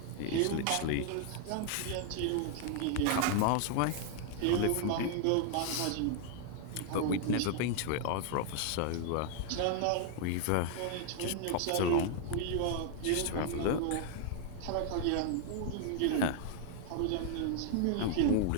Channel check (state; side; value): different; both; correlation 0.00